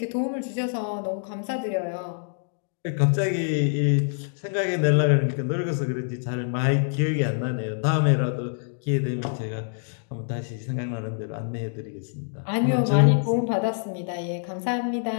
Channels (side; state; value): right; silent; digital silence